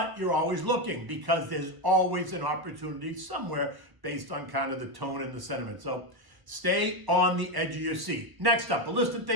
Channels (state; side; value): late; left; 1.0 ms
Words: you're always looking because there's always an opportunity somewhere based on kind of the tone and the sentiment. So stay on the edge of your seat. Next up, a list of